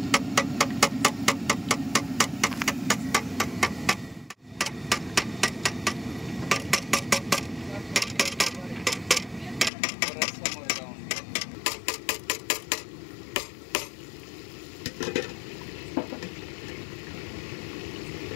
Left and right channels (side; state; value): right; drops out; at 9.7 s